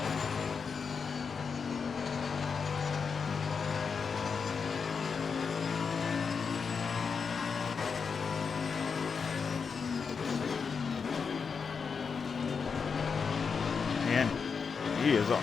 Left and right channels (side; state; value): right; quieter; 5.7 dB